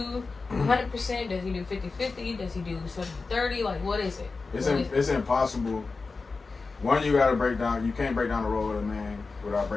100%? Does he do 50-50? Does he do 70-30? Like, what is it? It's impossible. One, you gotta break down. You can't break down the role of a man without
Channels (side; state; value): right; quieter; 4.1 dB